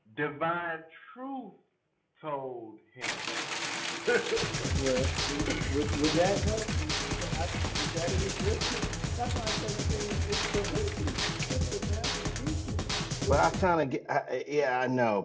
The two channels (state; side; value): identical; both; correlation 1.00